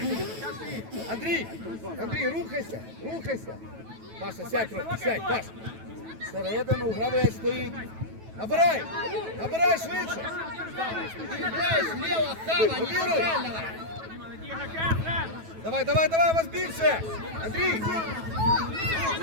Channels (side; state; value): left; late; 9.2 ms